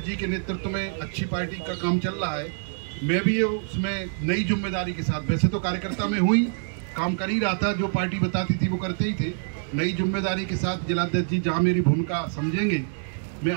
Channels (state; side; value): silent; left; digital silence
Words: जी के नेतृत्व में अच्छी पार्टी का काम चल रहा है। मैं भी उसमें नई जिम्मेदारी के साथ, वैसे तो कार्यकर्ता में हुई काम कर ही रहा था, जो पार्टी बताती थी वो करते ही थे। नई जिम्मेदारी के साथ जिलाध्यक्ष जी जहाँ मेरी भूमिका समझेंगे, मैं